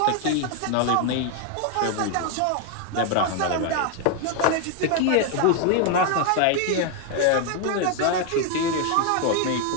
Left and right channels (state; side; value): different; both; correlation 0.01